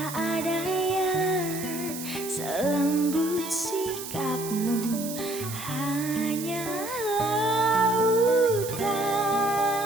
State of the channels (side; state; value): right; noise; hiss, 9 dB below the sound